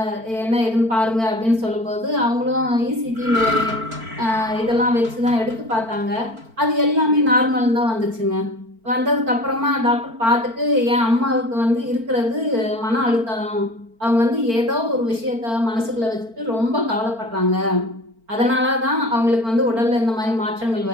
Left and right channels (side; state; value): left; late; 4.4 ms